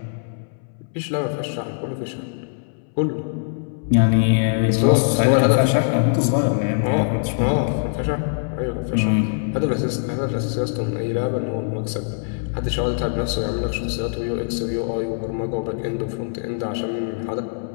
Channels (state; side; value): silent; right; 64 dB below the other